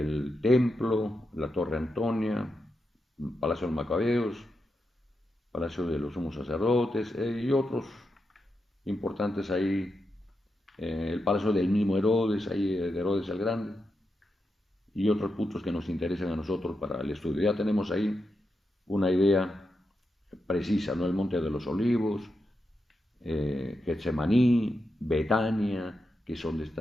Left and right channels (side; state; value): both; normal; correlation 0.87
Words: templo, la Torre Antonia, Palacio de los Macabeos, Palacio de los Sumos Sacerdotes y otros importantes ahí. El palacio del mismo Herodes, ahí de Herodes el Grande, y otros puntos que nos interesan a nosotros para el estudio. Ya tenemos ahí una idea precisa, ¿no? El Monte de los Olivos, Getsemaní, Betania, que es donde